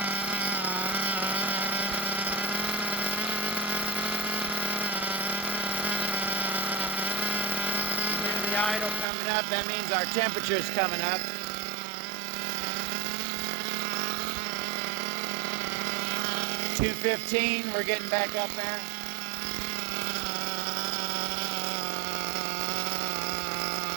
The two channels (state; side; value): drops out; left; at 9.1 s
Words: Idle coming up, that means our temperature's coming up. $215, we're getting back up there.